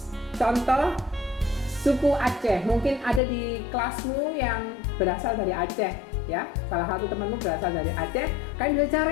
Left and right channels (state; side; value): drops out; right; at 3.2 s